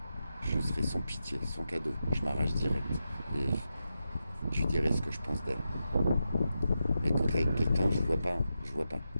je serai sans pitié, sans cadeau. Je m'arrache direct. Et je lui dirai ce que je pense d'elle. Mais quand t'es avec quelqu'un, je vois pas. Je vois pas.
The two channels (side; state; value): both; inverted; correlation -0.89